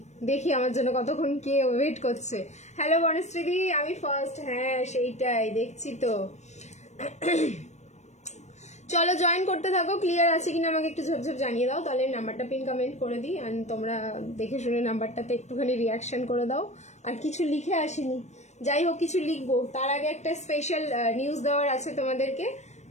দেখি আমার জন্য কতক্ষণ কে ওয়েট করছে। হ্যালো বনশ্রীদি, আমি ফার্স্ট। হ্যাঁ সেইটাই দেখছি তো। চলো জয়েন করতে থাকো। ক্লিয়ার আছে কিনা আমাকে একটু ঝপঝপ জানিয়ে দাও, তাহলে নাম্বারটা পিন কমেন্ট করে দিই। আর তোমরা দেখে শুনে নাম্বারটাতে একটুখানি রিয়াকশন করে দাও। আর কিছু লিখে আসিনি, যাই হোক কিছু লিখবো। তার আগে একটা স্পেশাল নিউজ দেওয়ার আছে তোমাদেরকে,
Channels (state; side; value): late; right; 0.33 ms